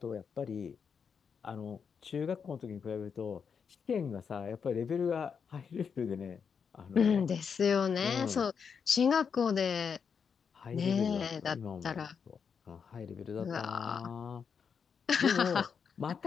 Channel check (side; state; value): right; quieter; 6.4 dB